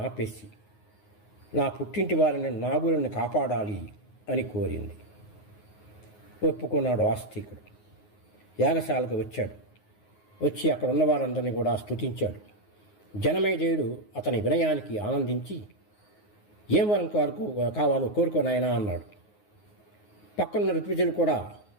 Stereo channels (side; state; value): right; late; 9.5 ms